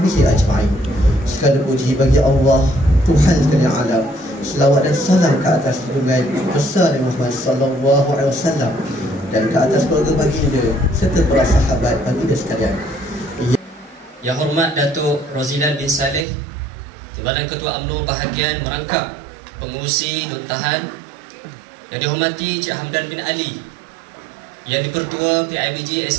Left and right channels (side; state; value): left; drops out; at 16.2 s